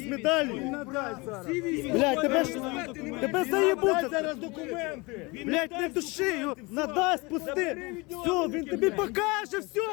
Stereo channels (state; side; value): quieter; right; 25.8 dB